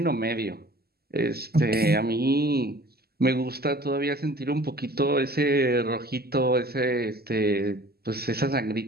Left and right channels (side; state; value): left; late; 0.46 ms